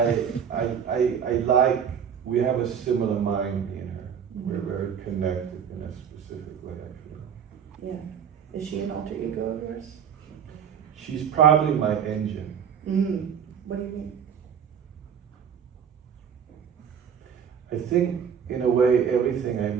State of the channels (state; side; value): quieter; left; 7.7 dB